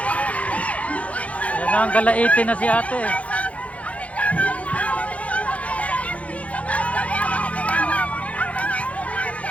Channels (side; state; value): right; late; 0.065 ms